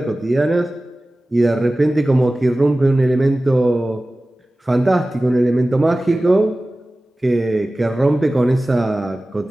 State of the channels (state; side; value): normal; both; correlation 0.97